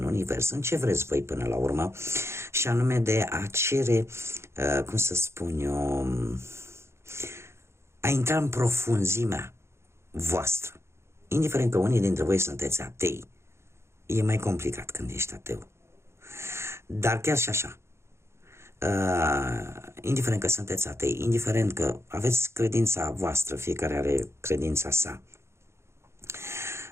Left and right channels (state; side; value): late; left; 0.13 ms